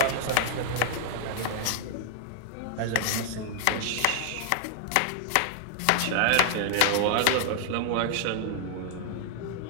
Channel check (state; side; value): different; both; correlation -0.01